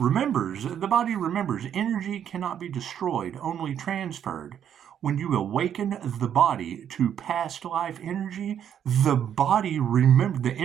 Energy cannot be destroyed, only transferred. When you awaken the body to past life energy, the body the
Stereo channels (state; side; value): quieter; left; 9.3 dB